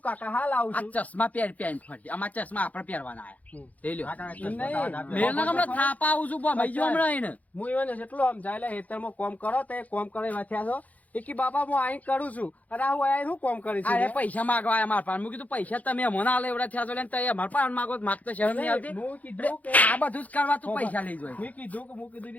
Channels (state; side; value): late; right; 0.075 ms